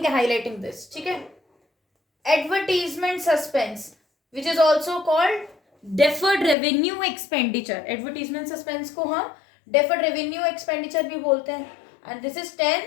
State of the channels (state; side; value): drops out; right; at 6.6 s